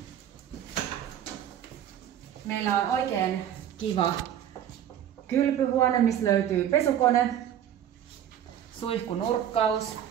Meillä on oikein kiva kylpyhuone, missä löytyy pesukone, suihkunurkkaus,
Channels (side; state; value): left; quieter; 10.3 dB